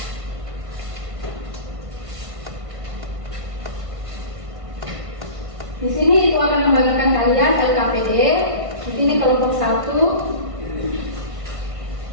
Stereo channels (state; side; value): late; left; 1.5 ms